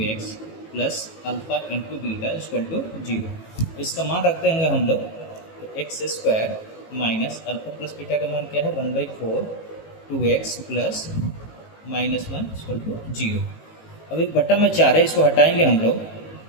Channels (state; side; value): late; right; 18 ms